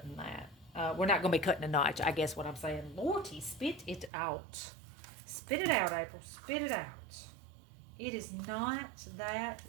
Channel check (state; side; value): drops out; left; at 4.1 s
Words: that. We're not going to be cutting a notch, I guess what I'm saying. Lordy, spit it out. Spit it out, April. Spit it out. It is not that